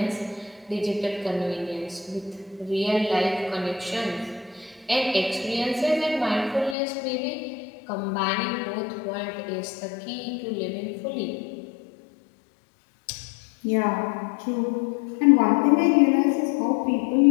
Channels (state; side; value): drops out; right; at 6.8 s